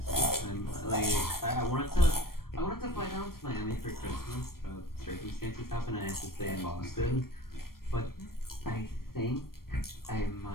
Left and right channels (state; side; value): late; right; 0.93 ms